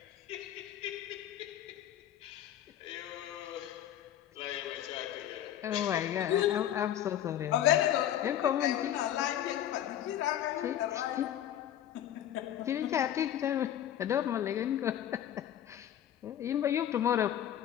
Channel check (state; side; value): quieter; right; 11.1 dB